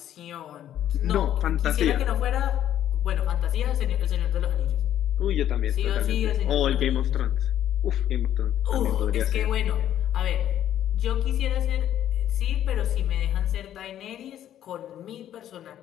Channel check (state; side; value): quieter; right; 11.2 dB